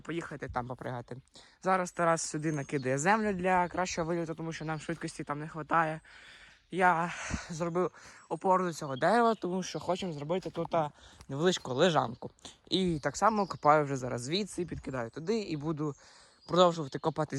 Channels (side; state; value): both; identical; correlation 1.00